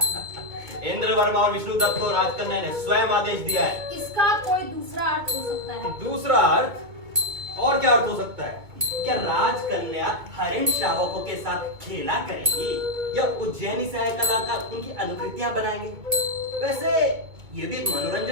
इंद्र वर्मा और विष्णु दत्त को राजकन्या ने स्वयं आदेश दिया है। इसका कोई दूसरा अर्थ हो सकता है। दूसरा अर्थ? और क्या अर्थ हो सकता है? क्या राजकन्या हरिण शावकों के साथ खेला करेंगी या उज्जैनी से आए कलाकार उनकी अनुकृतियां बनाएंगे? वैसे ये भी एक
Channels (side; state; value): left; late; 2.2 ms